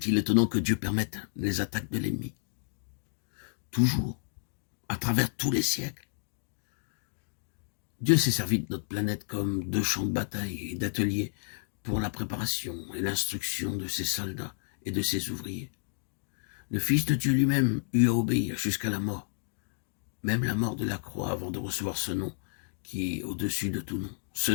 étonnant que Dieu permette les attaques de l'ennemi? Toujours, à travers tous les siècles. Dieu s'est servi de notre planète comme de champ de bataille et d'atelier pour la préparation et l'instruction de ses soldats et de ses ouvriers. Le Fils de Dieu lui-même eut à obéir jusqu'à la mort, même la mort de la croix avant de recevoir ce nom qui est au-dessus de tout nom, ce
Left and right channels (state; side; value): silent; right; digital silence